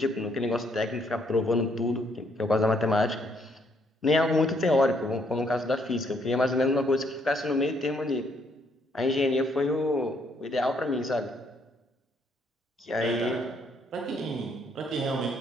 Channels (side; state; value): both; normal; correlation 0.70